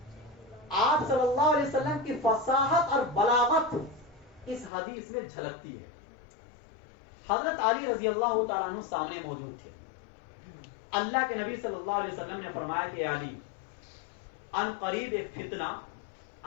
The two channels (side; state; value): right; drops out; at 4.7 s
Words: آپ صلی اللہ علیہ وسلم کی فصاحت اور بلاغت اس حدیث میں جھلکتی ہے. حضرت علی رضی اللہ تعالیٰ عنہ سامنے موجود تھے. اللہ کے نبی صلی اللہ علیہ وسلم نے فرمایا کہ علی ان قریب ایک فتنہ